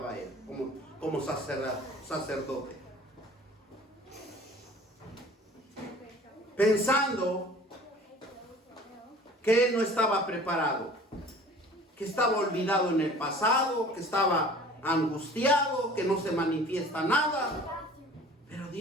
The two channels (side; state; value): both; normal; correlation 0.46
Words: él, como sacerdote. Pensando que él no estaba preparado, que estaba olvidado en el pasado, que estaba angustiado, que no se manifiesta nada. Pero